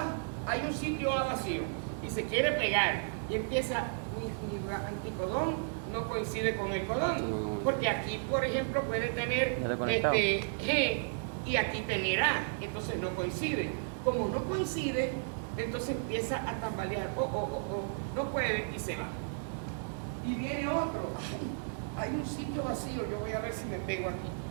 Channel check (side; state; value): left; silent; 55 dB below the other